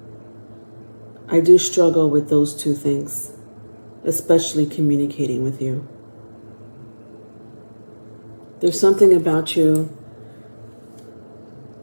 I do struggle with those two things, especially communicating with you. There's something about you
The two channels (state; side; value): inverted; both; correlation -1.00